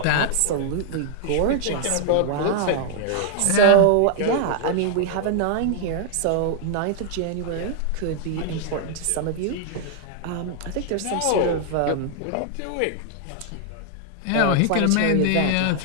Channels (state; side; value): different; both; correlation -0.01